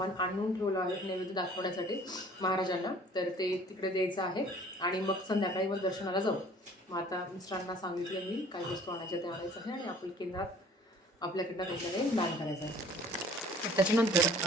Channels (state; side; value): normal; both; correlation 0.52